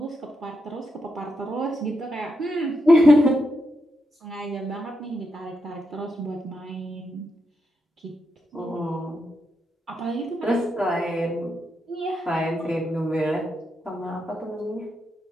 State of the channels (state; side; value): normal; both; correlation 0.83